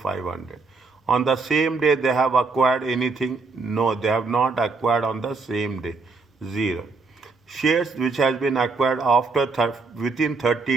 On the same day they have acquired anything? No, they have not acquired on the same day, 0. Shares which has been acquired after within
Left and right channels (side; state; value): left; quieter; 4.1 dB